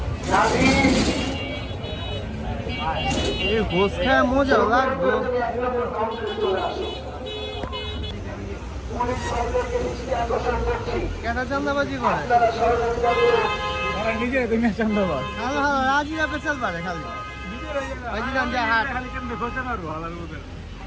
গোস খায় মজা লাগবে কেটা চান্দাবাজি করে নিজে তুমি চান্দাবাজ হ্যালো হ্যালো রাজিরা পেছাল পারে খালি রাজিরাম যা হাট খালি কেমনে খোঁজে মারবো হালার বুঝে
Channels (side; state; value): both; identical; correlation 1.00